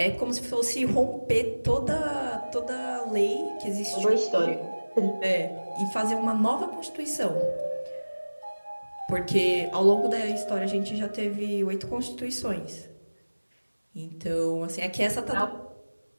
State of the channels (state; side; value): inverted; both; correlation -1.00